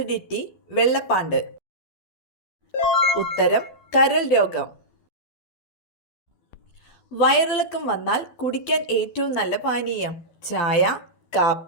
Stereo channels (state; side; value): late; right; 12 ms